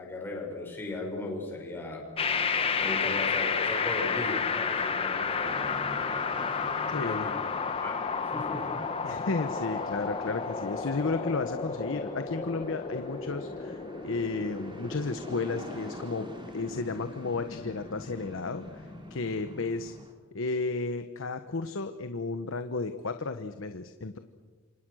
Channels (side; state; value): right; quieter; 4.0 dB